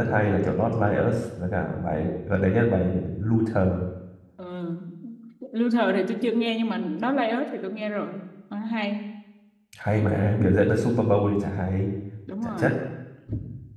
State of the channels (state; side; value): identical; both; correlation 1.00